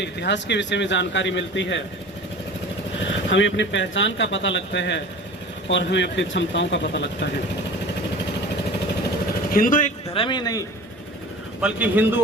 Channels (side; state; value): both; normal; correlation 0.39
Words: इतिहास के विषय में जानकारी मिलती है, हमें अपनी पहचान का पता लगता है और हमें अपनी क्षमताओं का पता लगता है। हिंदू एक धर्म ही नहीं बल्कि